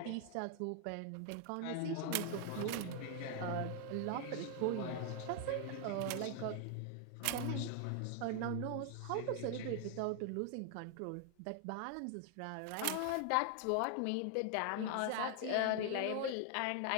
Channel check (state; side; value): different; both; correlation 0.00